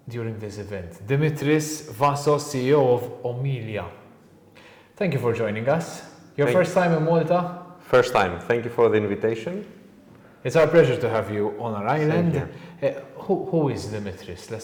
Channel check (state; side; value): identical; both; correlation 1.00